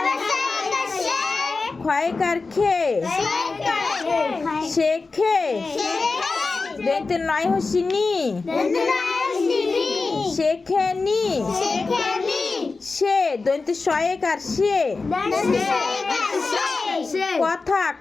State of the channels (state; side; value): quieter; right; 4.0 dB